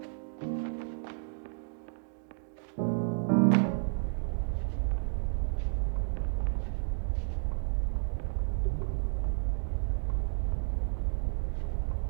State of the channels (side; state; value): left; silent; digital silence